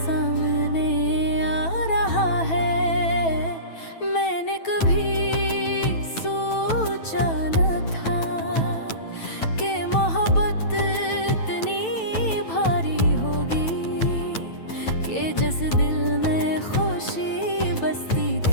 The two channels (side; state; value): right; late; 9.1 ms